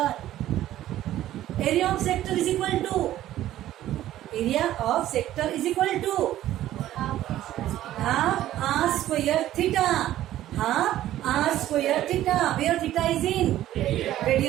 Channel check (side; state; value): left; quieter; 13.5 dB